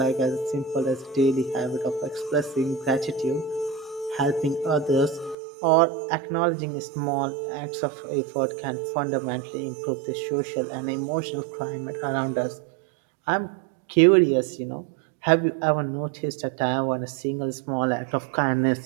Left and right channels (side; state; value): left; drops out; at 5.4 s